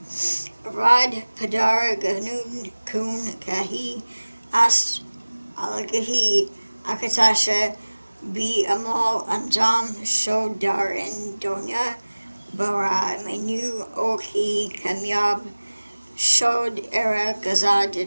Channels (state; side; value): inverted; both; correlation -1.00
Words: Rad Padar Ganun Kun Kahi Ast Algahi Akatasha Bi Amal Anjam Shodar and Donya Bara Mainyu Oki Kamyab Shod Era